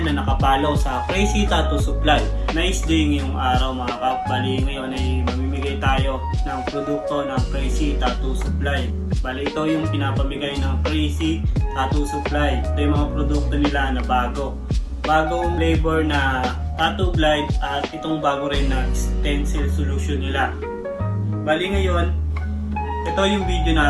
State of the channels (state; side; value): identical; both; correlation 1.00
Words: na nakapalo sa Crazy Tattoo Supply. Nice day ngayong araw mga kapali. Ngayon ay mamimigay tayo ng produkto ng Crazy Tattoo Supply. Bali ito yung pinapamigay ng Crazy Tattoo Supply. Ito yung mga produkto nila na bago. Bagong flavor na tattoo glide at itong bago rin na stencil solution nila. Bali ngayon, ito yung video